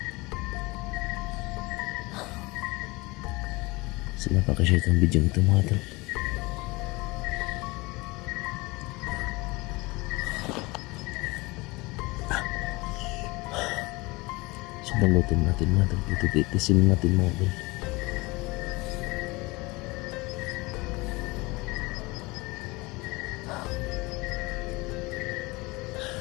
So, napakashare itong video ito mga ito. So, balutin natin mga ito. Ito, titisin natin mga ito.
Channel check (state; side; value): quieter; right; 23.5 dB